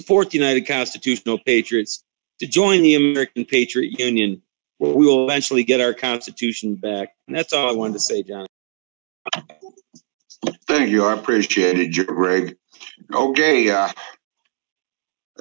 the United Constitutional Patriots, to join the American Patriot Union, where we will eventually get our Constitution back. And that's all I wanted to say, John. Thank you. I appreciate it, Greg. Okay.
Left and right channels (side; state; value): left; silent; 58 dB below the other